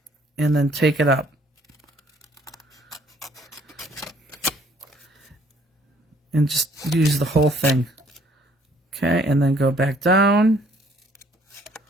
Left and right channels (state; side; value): normal; both; correlation 0.62